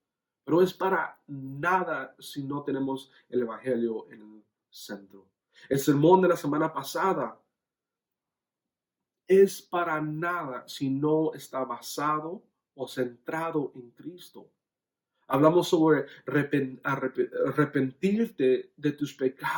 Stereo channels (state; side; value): identical; both; correlation 1.00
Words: pero es para nada si no tenemos el Evangelio en el centro. El sermón de la semana pasada es para nada si no está basado o centrado en Cristo. Hablamos sobre arrepentirte de tus